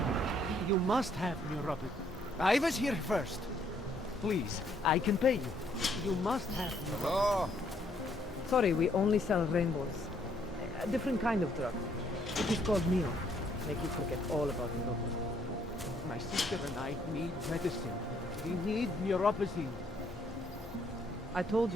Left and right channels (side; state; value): both; normal; correlation 0.68